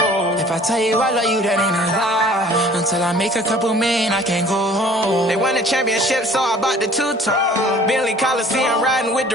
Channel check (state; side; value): normal; both; correlation 0.51